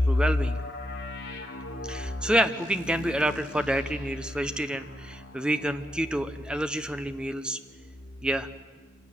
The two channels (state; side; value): normal; both; correlation 0.81